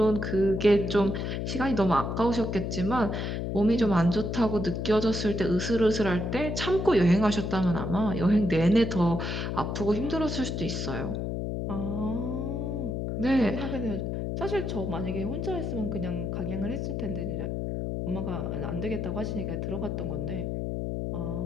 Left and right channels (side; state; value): left; noise; hum, 2 dB below the sound